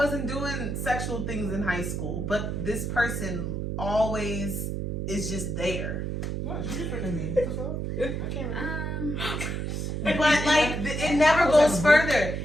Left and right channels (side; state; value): right; noise; hum, 3 dB below the sound